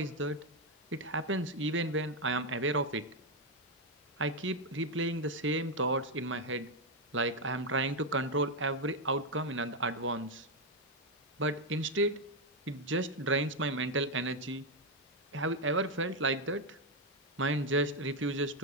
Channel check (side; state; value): both; normal; correlation 0.04